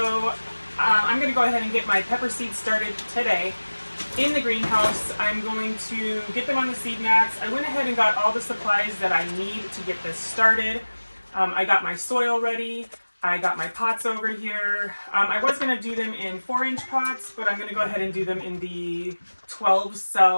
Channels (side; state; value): both; inverted; correlation -1.00